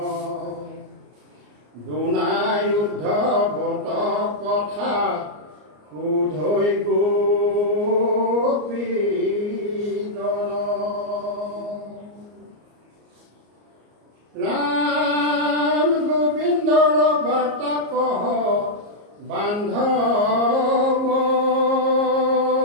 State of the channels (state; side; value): late; left; 34 ms